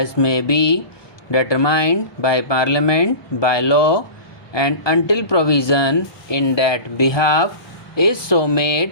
may be determined by Parliament by law, and until provision in that behalf is so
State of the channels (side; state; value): right; late; 1.2 ms